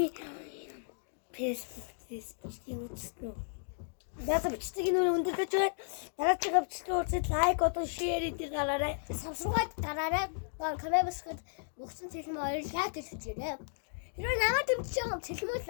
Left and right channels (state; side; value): silent; right; digital silence